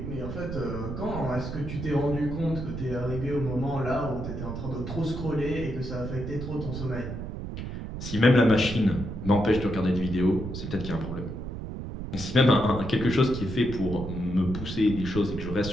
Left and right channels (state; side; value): noise; right; rumble, 7 dB below the sound